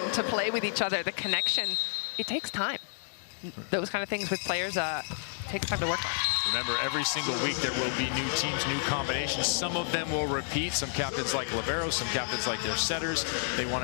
to play with each other, the connection, it takes time. Those kind of things with players takes time to work on. Remember, every single week there will be new teams, new combinations. Some of them will repeat. Some captains like liberos, some captains like their setters. They want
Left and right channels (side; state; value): right; silent; digital silence